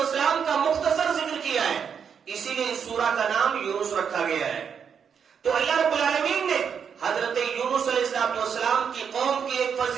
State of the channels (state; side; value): quieter; left; 7.1 dB